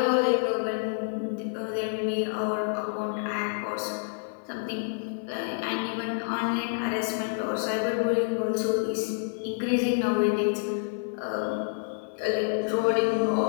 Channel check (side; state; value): right; silent; 59 dB below the other